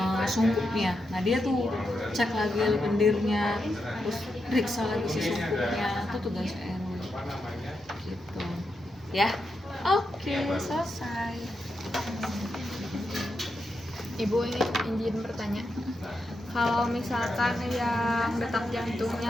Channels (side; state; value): both; normal; correlation 0.85